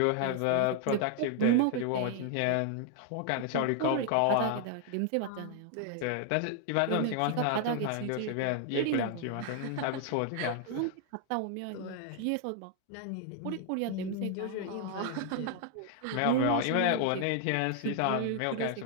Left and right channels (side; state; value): both; different; correlation 0.00